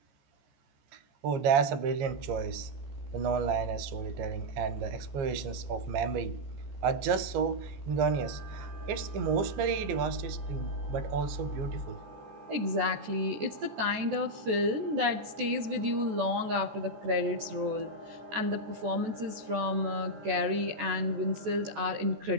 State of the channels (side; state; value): left; late; 14 ms